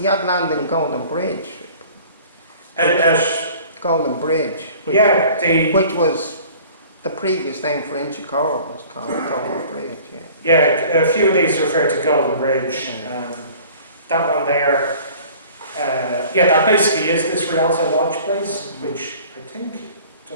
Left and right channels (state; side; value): inverted; both; correlation -0.48